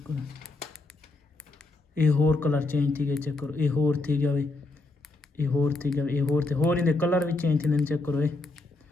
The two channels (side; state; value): right; quieter; 3.2 dB